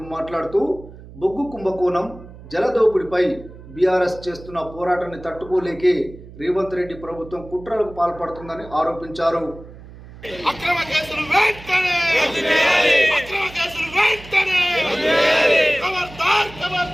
మాట్లాడుతూ బొగ్గు కుంభకోణం, జలదోపిడిపై బీఆర్ఎస్ చేస్తున్న పోరాటాన్ని తట్టుకోలేకే రేవంత్ రెడ్డి ప్రభుత్వం కుట్రలకు పాల్పడుతుందని ఆరోపించారు. అక్రమ కేసులు వెంటనే అక్రమ కేసులు వెంటనే ఖబర్దార్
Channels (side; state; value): right; noise; hum, 18 dB below the sound